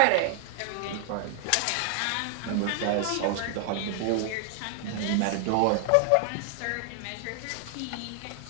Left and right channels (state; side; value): different; both; correlation 0.00